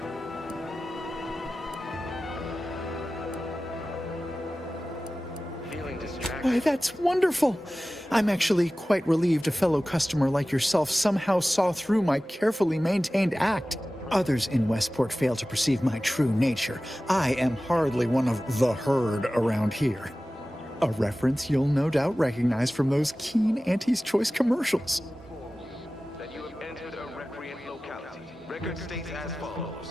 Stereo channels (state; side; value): normal; both; correlation 0.96